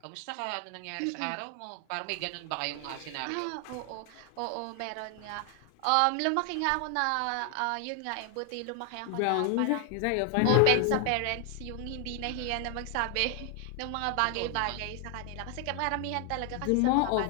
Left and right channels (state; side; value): different; both; correlation 0.00